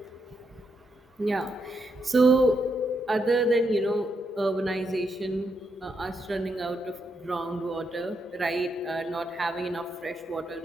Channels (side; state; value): both; normal; correlation 0.80